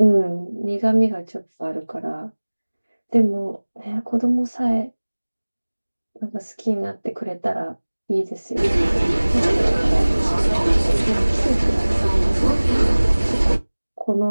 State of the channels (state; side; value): inverted; both; correlation -1.00